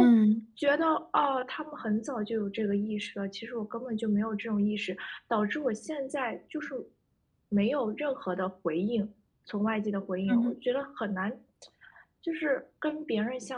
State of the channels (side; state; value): both; identical; correlation 1.00